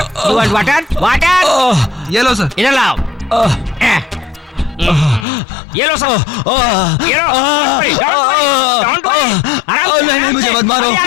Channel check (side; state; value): right; drops out; at 5.2 s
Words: ये लो सर। इधर लाओ। ये लो सर, ये लो। Don't worry. आराम से, नहीं, मुझे मत मारो।